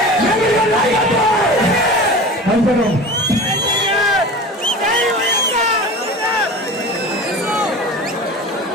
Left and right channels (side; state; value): both; normal; correlation 0.34